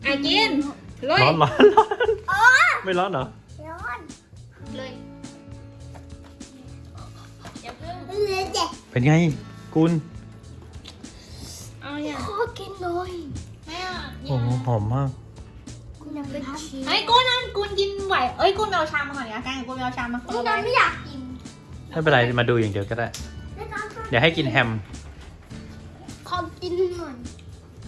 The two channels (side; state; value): both; identical; correlation 1.00